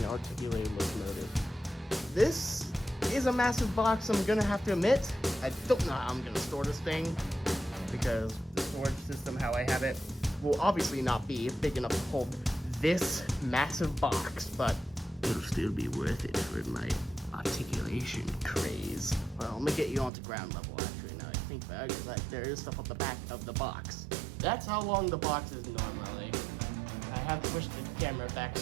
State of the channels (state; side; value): drops out; left; at 20.1 s